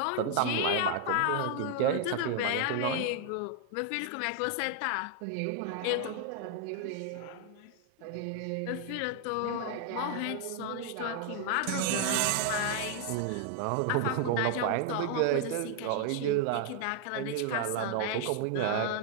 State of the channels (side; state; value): both; different; correlation 0.00